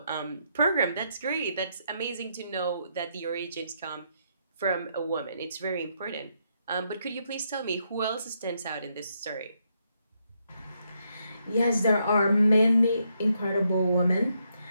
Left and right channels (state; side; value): inverted; both; correlation -0.78